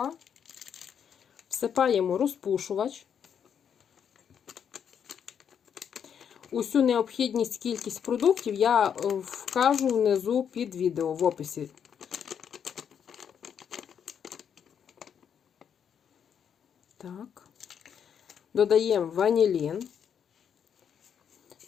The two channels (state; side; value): quieter; right; 8.0 dB